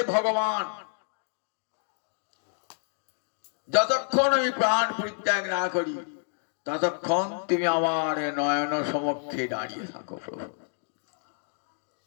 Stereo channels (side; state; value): right; silent; digital silence